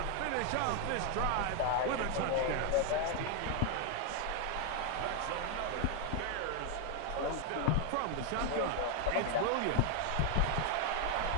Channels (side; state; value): both; different; correlation 0.01